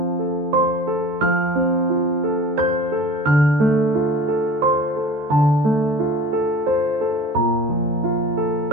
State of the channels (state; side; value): late; left; 14 ms